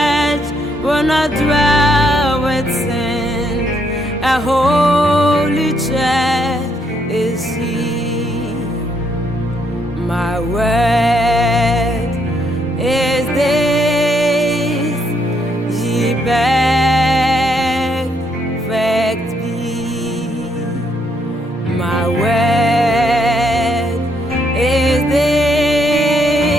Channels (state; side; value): normal; both; correlation 0.73